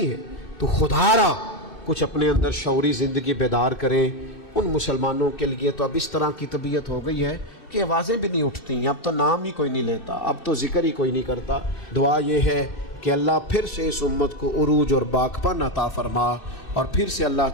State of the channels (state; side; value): late; right; 2.6 ms